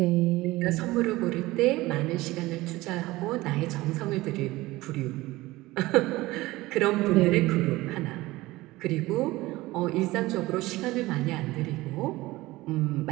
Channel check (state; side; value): quieter; left; 19.0 dB